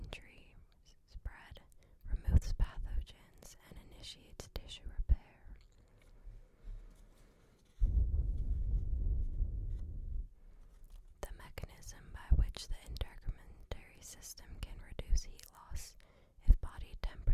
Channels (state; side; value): identical; both; correlation 1.00